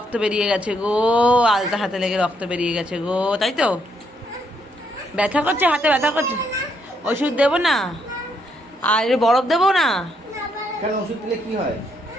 বেরিয়ে গেছে গো, আলতা হাতে লেগে রক্ত বেরিয়ে গেছে গো, তাই তো? ব্যথা করছে, হাতে ব্যথা করছে। ওষুধ দেবো না? আর বরফ দেবো না? কেন, ওষুধ দিলে কি হয়?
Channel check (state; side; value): normal; both; correlation 0.74